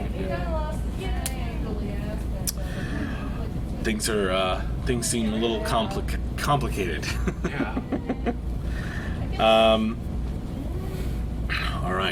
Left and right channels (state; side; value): identical; both; correlation 1.00